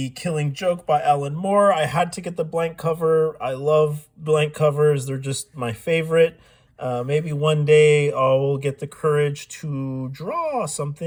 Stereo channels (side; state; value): both; identical; correlation 1.00